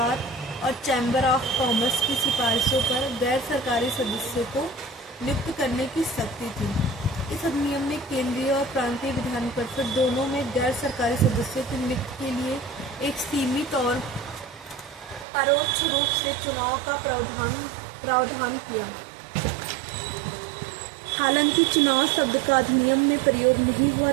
और चैम्बर ऑफ कॉमर्स की सिफारिशों पर गैर सरकारी सदस्यों को नियुक्त करने की शक्ति थी। इस अधिनियम में केंद्रीय और प्रांतीय विधान परिषद दोनों में गैर सरकारी सदस्यों की नियुक्ति के लिए एक सीमित और परोक्ष रूप से चुनाव का प्रावधान किया। हालांकि चुनाव शब्द का अधिनियम में प्रयोग नहीं हुआ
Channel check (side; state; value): left; drops out; at 15.2 s